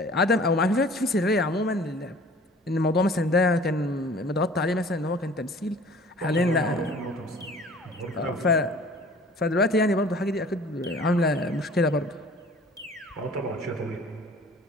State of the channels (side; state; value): both; normal; correlation 0.48